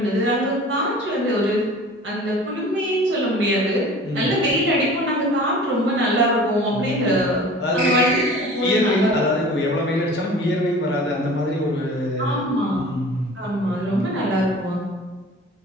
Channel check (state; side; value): normal; both; correlation 0.43